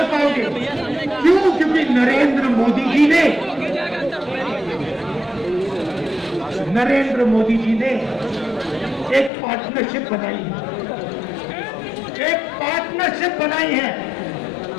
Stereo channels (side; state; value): right; drops out; at 9.3 s